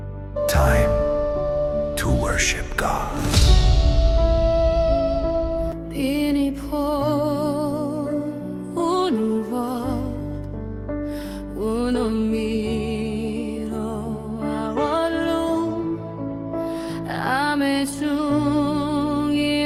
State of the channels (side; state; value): both; identical; correlation 1.00